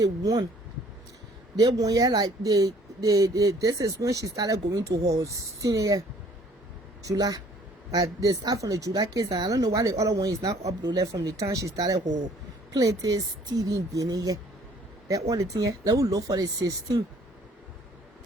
won. They won here like this is when she started going to her senior year, July. They start from the July case, and I don't know why the other one is not uploaded from the time she started her plaintiff stealing beginning here. That all the thing here. Let me look for the 16.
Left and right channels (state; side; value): normal; both; correlation 0.57